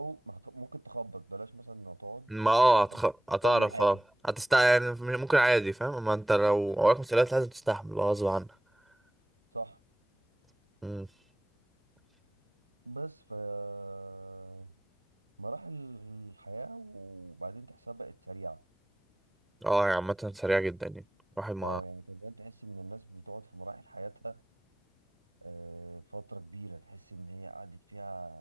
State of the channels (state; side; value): normal; both; correlation 0.90